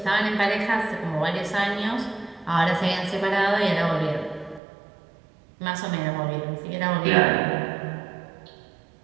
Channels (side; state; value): left; drops out; at 4.6 s